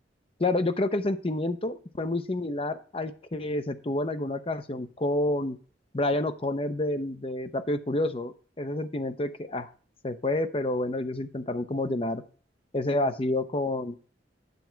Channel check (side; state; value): both; normal; correlation 0.48